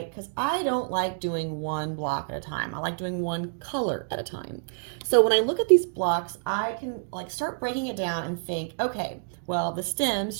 Because I don't like doing one block at a time. I like doing one color at a time. So when I look at these blocks, I can like start breaking it down and think, okay, well, the stems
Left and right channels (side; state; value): left; silent; digital silence